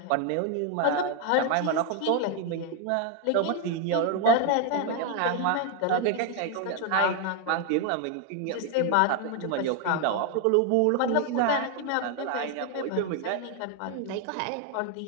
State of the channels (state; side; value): different; both; correlation 0.01